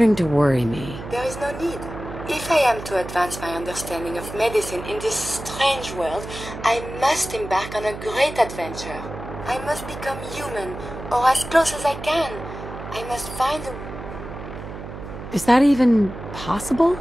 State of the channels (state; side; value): noise; right; hum, 11 dB below the sound